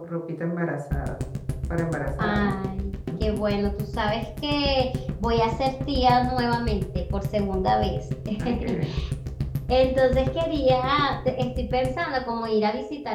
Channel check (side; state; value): both; identical; correlation 1.00